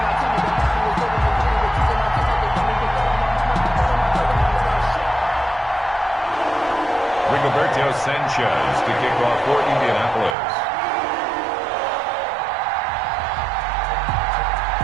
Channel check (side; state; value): left; drops out; at 10.4 s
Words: Rigoberto Sanchez to kick off for Indianapolis.